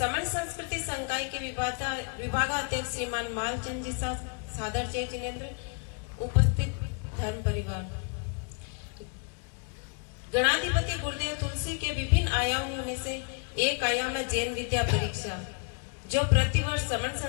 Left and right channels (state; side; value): quieter; right; 39.4 dB